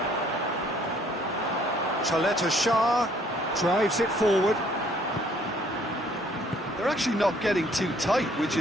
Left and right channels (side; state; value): both; normal; correlation 0.61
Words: Chaleta Shah drives it forward. They're actually not getting too tight, which